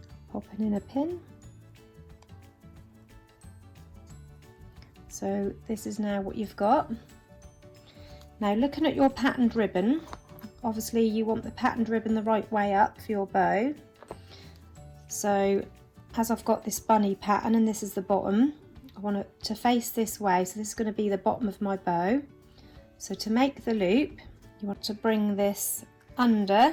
Popping in a pin. So this is now what you've got. Now looking at your patterned ribbon, obviously you want the patterned ribbon the right way up for your bow. So as I've got this bunny pattern and this is the bottom, I want it to face this way, so this is going to be the bottom of my bow. So to make the loop, you want to bring this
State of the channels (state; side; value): identical; both; correlation 1.00